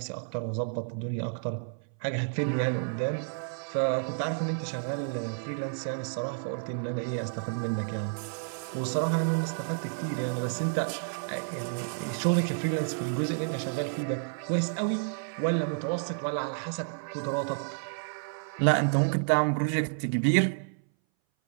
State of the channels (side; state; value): left; silent; 58 dB below the other